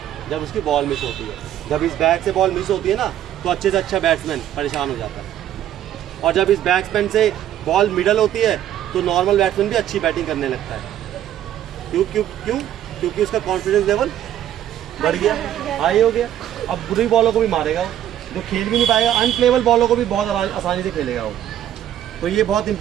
जब उसकी बॉल मिस होती है। जब इस बैट से बॉल मिस होती है ना, तो अच्छे से अच्छा बैट्समैन परेशान हो जाता है, और जब इस बैट्समैन से बॉल मिडल होती है तो नॉर्मल बैट्समैन भी अच्छी बैटिंग करने लगता है। क्योंकि उसका कॉन्फिडेंस लेवल बढ़ गया, हाई हो गया। अब बुरी बॉलों को भी मारेगा वो, जो खेल भी नहीं पाएगा, अनप्लेबल बॉलों को भी बहुत आसानी से खेलेगा वो। तो ये बहुत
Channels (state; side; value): quieter; left; 11.4 dB